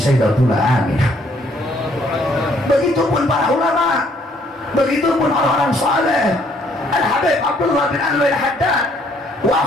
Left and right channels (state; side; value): normal; both; correlation 0.65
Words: Aminah. Begitupun para ulama, begitupun orang-orang saleh. Al-Habib Abdullah bin Anwar Haddad